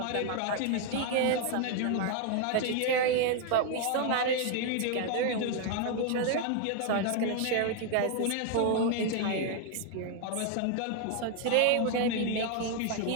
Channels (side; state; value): both; different; correlation 0.00